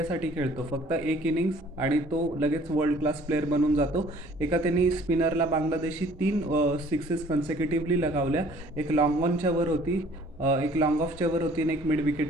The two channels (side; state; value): both; normal; correlation 0.54